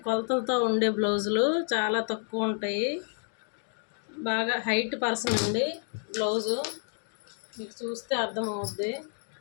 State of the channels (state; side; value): silent; right; 58 dB below the other